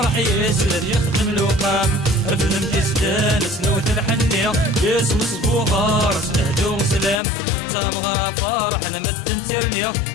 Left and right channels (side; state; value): right; drops out; at 7.2 s